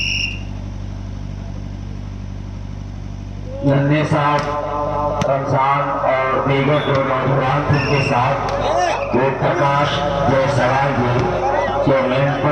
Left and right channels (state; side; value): identical; both; correlation 1.00